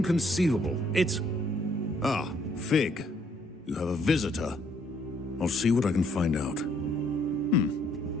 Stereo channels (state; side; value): normal; both; correlation 0.67